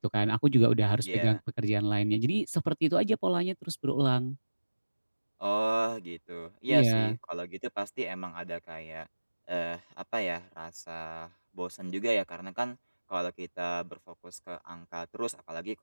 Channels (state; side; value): inverted; both; correlation -1.00